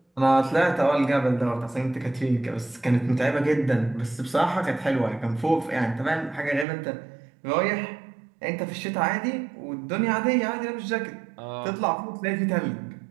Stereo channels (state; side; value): drops out; left; at 6.7 s